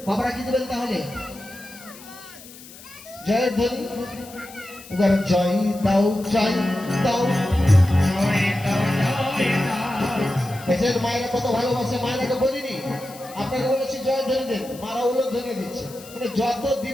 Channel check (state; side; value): noise; left; hiss, 19 dB below the sound